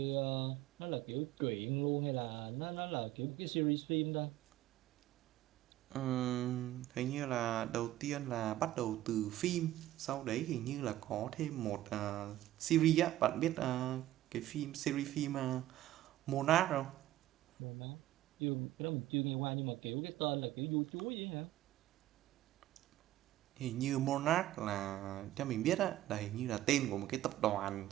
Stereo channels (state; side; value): quieter; left; 14.4 dB